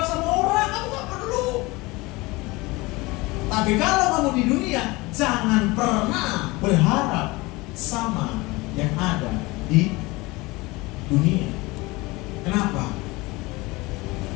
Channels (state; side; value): quieter; right; 22.7 dB